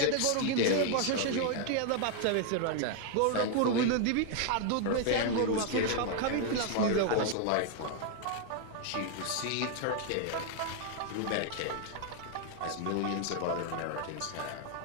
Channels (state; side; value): different; both; correlation 0.00